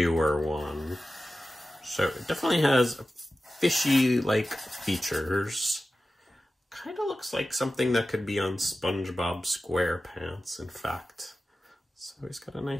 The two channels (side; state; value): both; normal; correlation 0.94